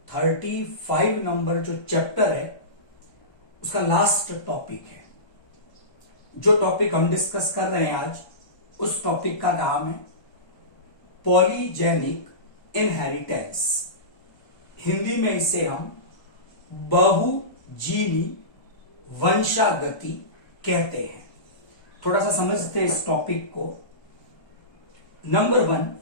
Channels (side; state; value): right; late; 1.2 ms